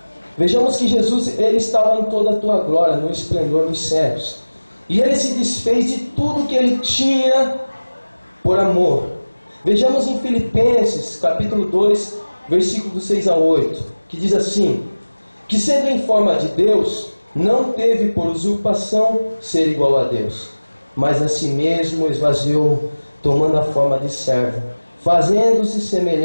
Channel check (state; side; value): inverted; both; correlation -1.00